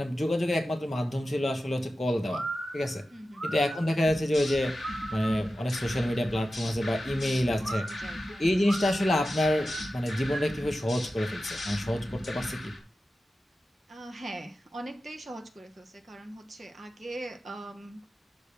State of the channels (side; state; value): both; normal; correlation 0.93